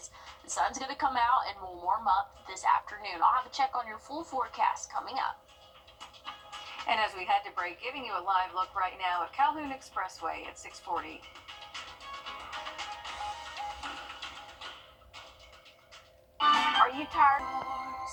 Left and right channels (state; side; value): identical; both; correlation 1.00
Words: the sun's going to come out and will warm up this afternoon. I'll have a check on your full forecast coming up. And as we head to break, giving you a live look right now at Calhoun Expressway at 640. Are you tired?